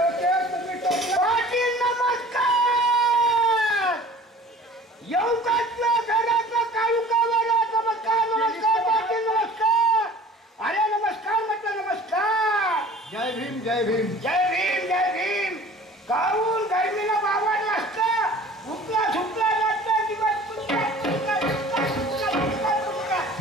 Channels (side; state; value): both; normal; correlation 0.46